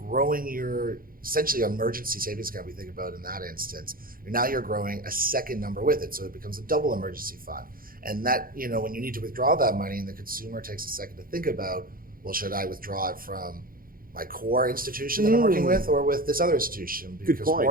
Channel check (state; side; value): late; left; 0.42 ms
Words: your essentially emergency savings account, we think about in that instance, now you're growing a second number with it, so it becomes a double emergency fund. And that, when you need to withdraw that money and the consumer takes a second to think about, well, should I withdraw it from my core institution that I'm working with or with this other institution? Because